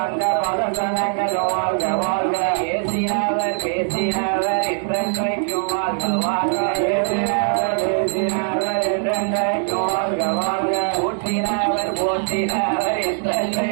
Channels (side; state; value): left; silent; 57 dB below the other